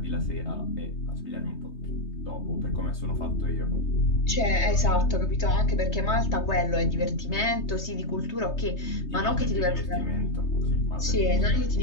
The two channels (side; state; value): right; late; 3.2 ms